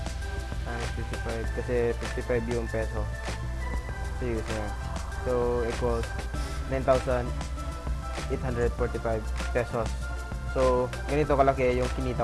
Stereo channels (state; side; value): identical; both; correlation 1.00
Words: times 55 kasi 55 yung peso. So, US na. So, equals 9,845 pesos. So, ganito kalaki yung